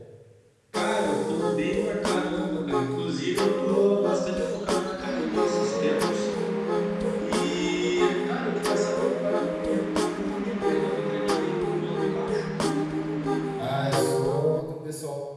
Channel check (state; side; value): identical; both; correlation 1.00